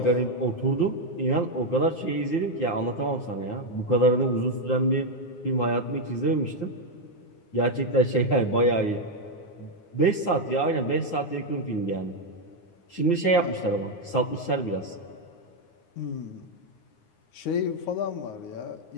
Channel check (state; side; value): late; right; 9.6 ms